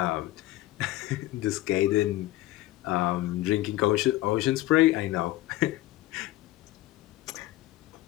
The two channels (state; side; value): quieter; right; 16.6 dB